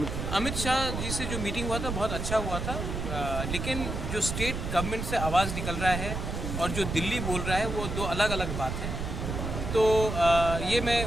अमित शाह जी से जो मीटिंग हुआ था बहुत अच्छा हुआ था, लेकिन जो स्टेट गवर्नमेंट से आवाज़ निकल रहा है और जो दिल्ली बोल रहा है वो 2 अलग अलग बात है। तो ये मैं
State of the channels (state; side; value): noise; right; rumble, 4 dB below the sound